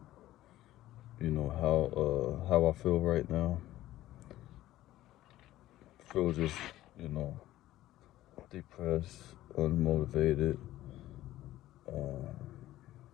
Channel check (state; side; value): quieter; right; 14.9 dB